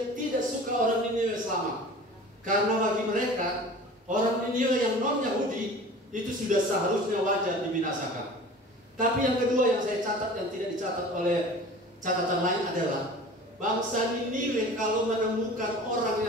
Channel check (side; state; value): both; normal; correlation 0.41